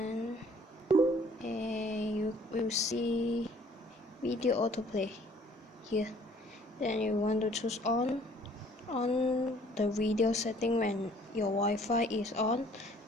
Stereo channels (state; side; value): normal; both; correlation 0.57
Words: you will see video autoplay here. Then you want to choose on the video setting when your Wi-Fi is on,